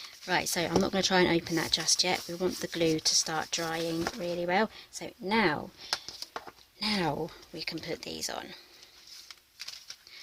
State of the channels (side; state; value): both; identical; correlation 1.00